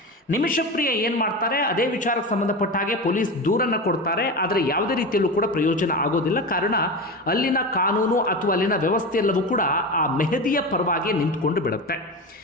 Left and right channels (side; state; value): both; normal; correlation 0.23